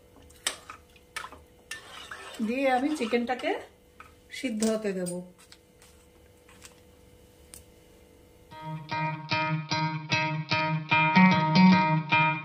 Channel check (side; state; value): both; identical; correlation 1.00